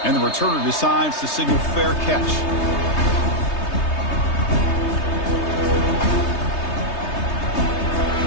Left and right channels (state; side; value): late; right; 3.3 ms